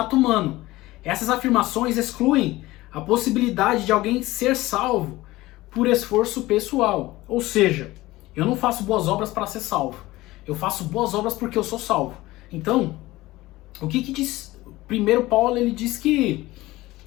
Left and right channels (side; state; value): right; quieter; 18.4 dB